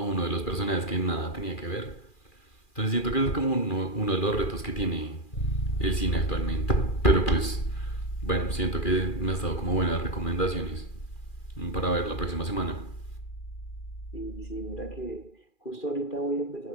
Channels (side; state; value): right; late; 2.4 ms